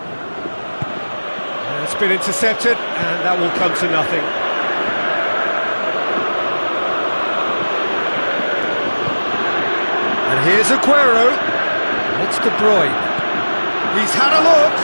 It's been intercepted, and that will come to nothing. And here's Aguero. It's De Bruyne. He's had a look.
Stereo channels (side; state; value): both; inverted; correlation -1.00